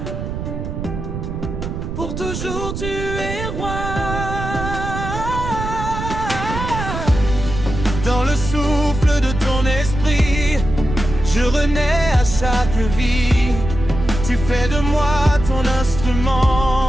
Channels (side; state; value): right; noise; rumble, 6 dB below the sound